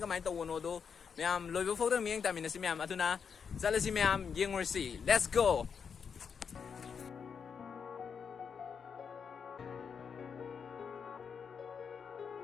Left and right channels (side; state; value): right; quieter; 6.5 dB